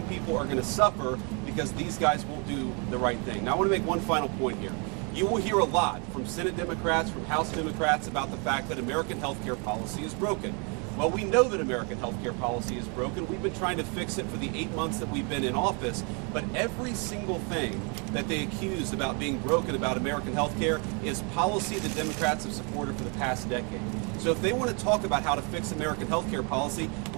people are going to suffer because these guys won't do the right thing. Now, I want to make one final point here. You will hear a lot from Senate Democrats, from House Democrats about the fact that American health care policy is broken. Well, we know that American health care policy is broken. We've been trying to fix it for the 8 months that we've been in office, but every single thing that they accuse about being broken about American health care is policy that Democrats have supported for the past decade. So if they want to talk about how to fix American health care policy,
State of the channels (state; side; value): quieter; left; 34.8 dB